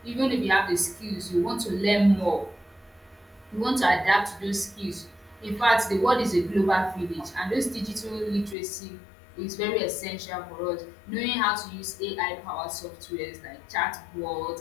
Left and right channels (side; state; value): right; drops out; at 8.6 s